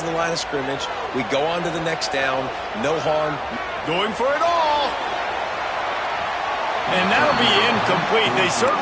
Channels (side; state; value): both; identical; correlation 1.00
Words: the line of scrimmage. We go on to the next down. No harm. Going for it all. And that'll be incomplete. They